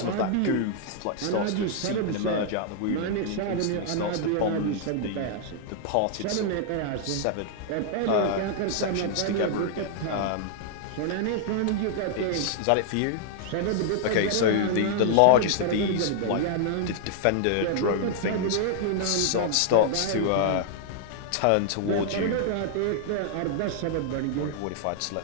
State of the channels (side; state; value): both; different; correlation -0.01